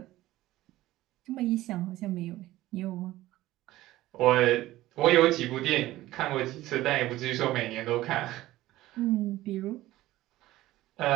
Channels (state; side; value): quieter; left; 16.3 dB